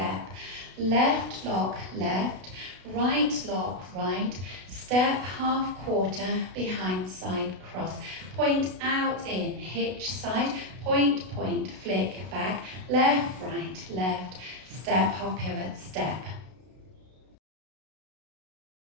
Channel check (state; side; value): late; left; 32 ms